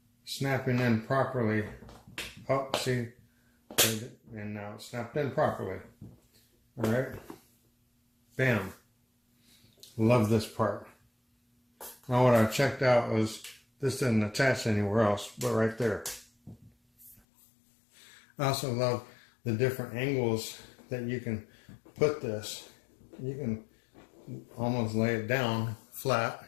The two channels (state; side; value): drops out; right; at 17.2 s